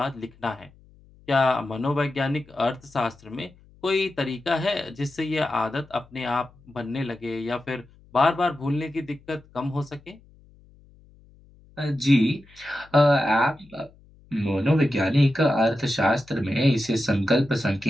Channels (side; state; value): left; noise; hum, 27 dB below the sound